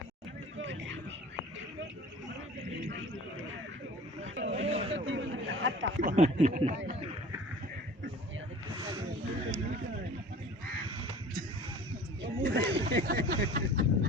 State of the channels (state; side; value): normal; both; correlation 0.44